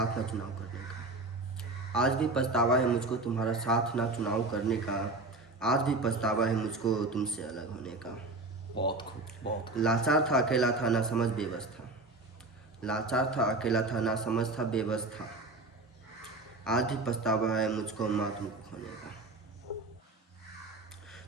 ना चुनाव करने का। आज भी पछतावा है मुझको तुम्हारा साथ ना चुनाव करने का। आज भी पछतावा है मुझको तुमसे अलग होने का। बहुत खूब, बहुत खूब। लाचार था, अकेला था, ना समझ बेबस था। लाचार था, अकेला था, ना समझ था, बेबस था। आज भी पछतावा है मुझको माँ तुमको खोने का।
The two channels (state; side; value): quieter; left; 3.1 dB